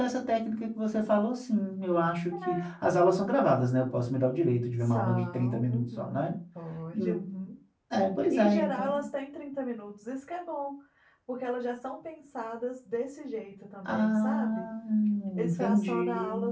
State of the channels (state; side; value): identical; both; correlation 1.00